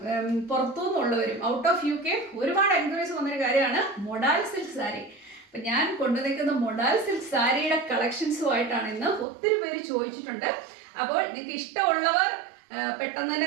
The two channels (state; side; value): drops out; left; at 9.2 s